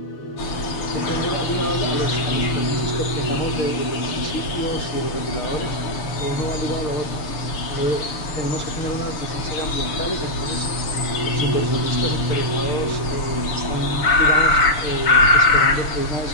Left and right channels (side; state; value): right; late; 6.7 ms